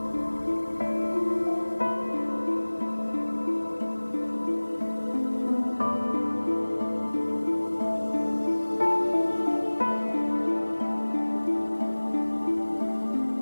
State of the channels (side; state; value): both; inverted; correlation -1.00